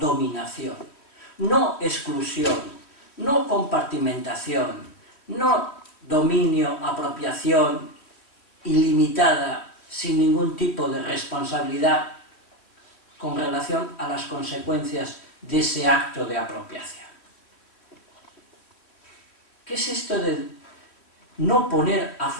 no exclusión, no compartimentación, no dominio, apropiación ilimitada, sin ningún tipo de responsabilidad con relación a las consecuencias de ese acto de apropiación. ¿Qué es esto de no poner a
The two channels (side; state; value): right; late; 3.1 ms